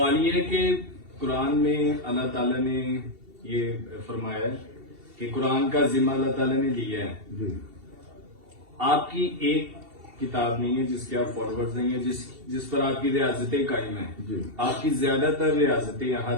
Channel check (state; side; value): late; left; 2.7 ms